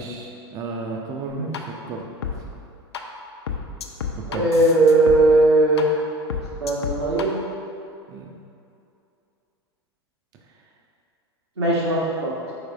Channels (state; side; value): normal; both; correlation 0.47